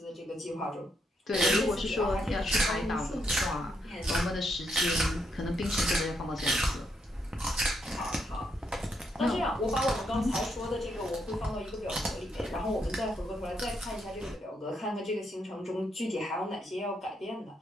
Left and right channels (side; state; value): both; normal; correlation 0.78